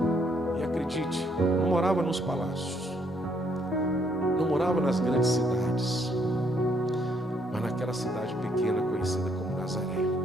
E acredite, não morava nos palácios, não morava nas grandes cidades, mas naquela cidade pequena conhecida como Nazaré.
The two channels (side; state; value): both; normal; correlation 0.70